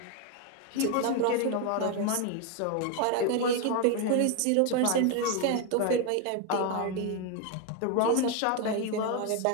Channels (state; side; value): different; both; correlation 0.01